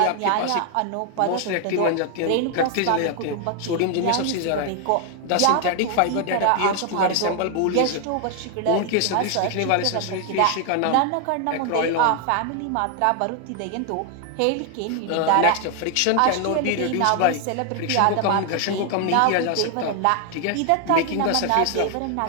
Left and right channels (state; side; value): different; both; correlation 0.00